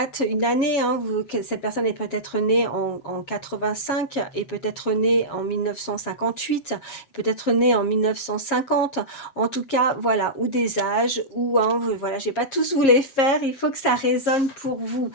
une année, hein, cette personne est peut-être née en 85 et peut-être née en 1958, peut-être née en 1950, en tout cas voilà, ou des âges, ou hein, voilà, j'ai pas tous vous les faire, il faut que ça résonne pour vous.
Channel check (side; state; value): right; late; 7.3 ms